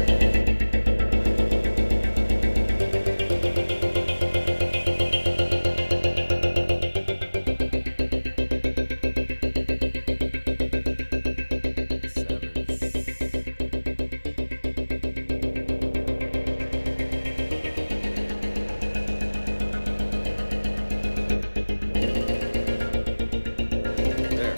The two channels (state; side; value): inverted; both; correlation -1.00